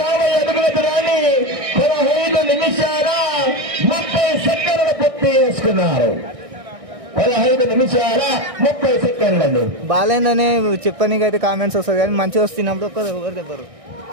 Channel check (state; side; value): late; left; 1.6 ms